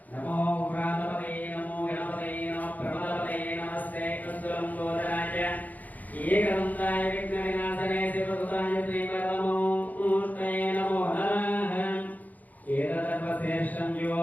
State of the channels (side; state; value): right; late; 0.080 ms